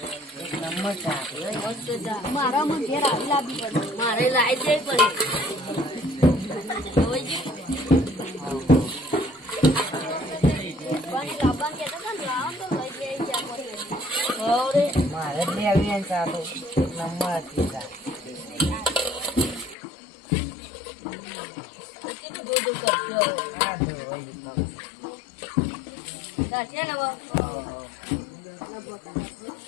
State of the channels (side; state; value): right; drops out; at 19.8 s